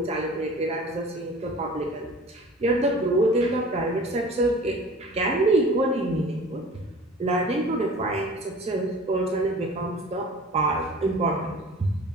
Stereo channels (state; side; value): normal; both; correlation 0.43